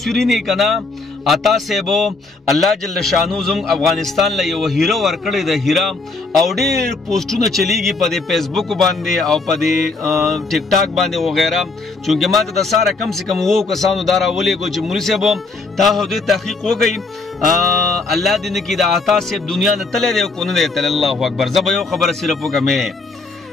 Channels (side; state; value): right; quieter; 3.8 dB